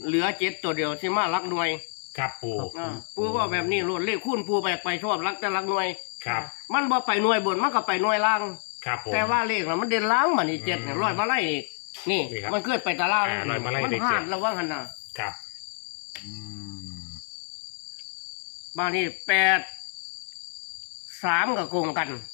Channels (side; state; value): right; silent; 60 dB below the other